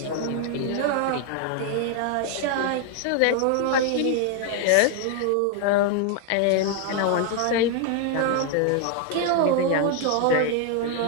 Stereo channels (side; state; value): both; different; correlation 0.00